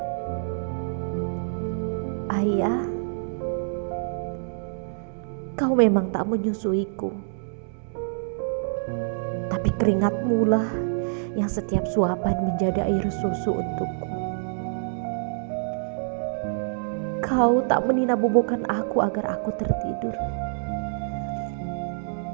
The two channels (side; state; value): left; silent; digital silence